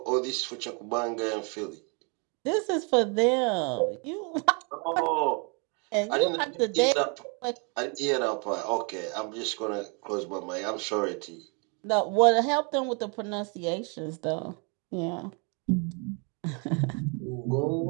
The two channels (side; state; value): left; quieter; 35.1 dB